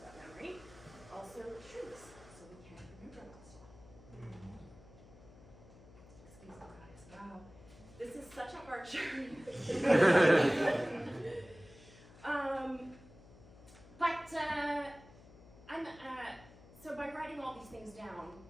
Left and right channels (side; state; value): left; noise; hum, 21 dB below the sound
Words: about memory, also shrinks, so we can't remember a lot of stuff. Excuse me, guys. Wow. This is such a hard journey. So by writing all these things down,